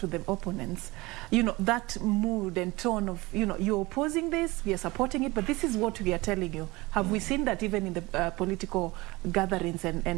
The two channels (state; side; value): quieter; left; 22.1 dB